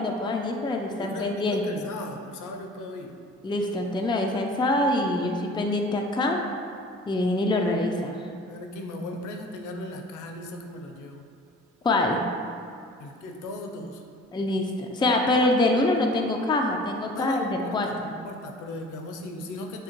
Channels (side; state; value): both; normal; correlation 0.45